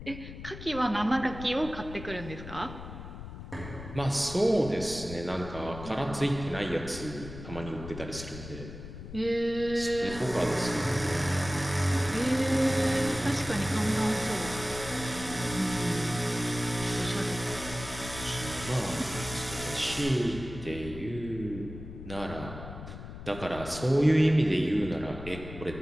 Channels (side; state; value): left; noise; rumble, 11 dB below the sound